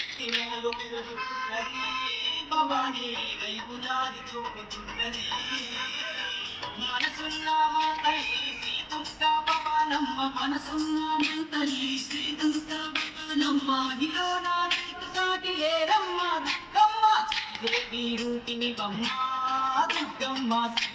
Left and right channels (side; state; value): both; identical; correlation 1.00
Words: ఇనాలు పెరుగుతున్నది భవాని నీ వైపు దారి చూపుతున్నది మనసున్న మా తల్లి శ్రీ దుర్గా భవానమ్మ మనసున్న మా తల్లి శ్రీ దుర్గా భవానమ్మ ఇలో నా నీకు సాటి లేరమ్మ దుర్గమ్మ దేవి రూపిణి బమ్మ దుర్గమ్మ